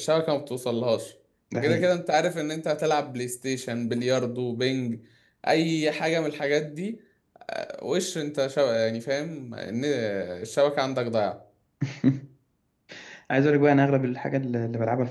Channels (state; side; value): identical; both; correlation 1.00